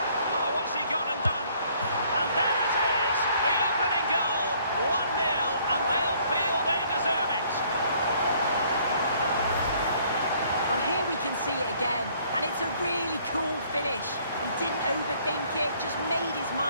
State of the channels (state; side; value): inverted; both; correlation -0.61